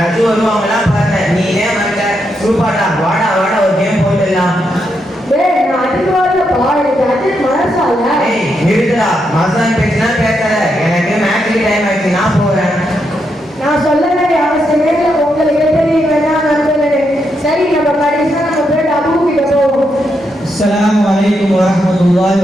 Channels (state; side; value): normal; both; correlation 0.81